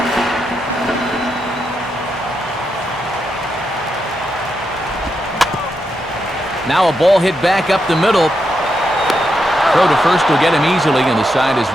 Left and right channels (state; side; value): normal; both; correlation 0.84